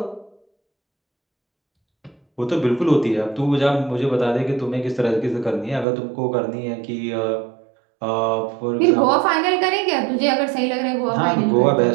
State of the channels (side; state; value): left; drops out; at 5.9 s